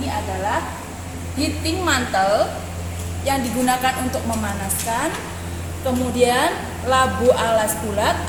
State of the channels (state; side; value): identical; both; correlation 1.00